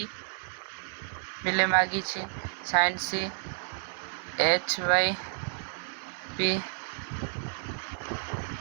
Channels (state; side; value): silent; left; digital silence